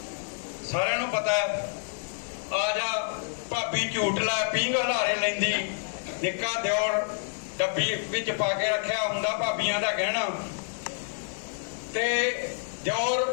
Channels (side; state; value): right; silent; 58 dB below the other